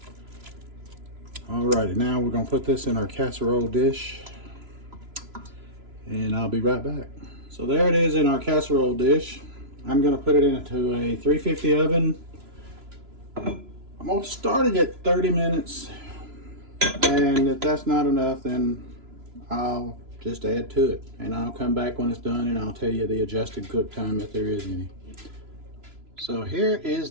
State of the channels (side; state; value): left; late; 3.0 ms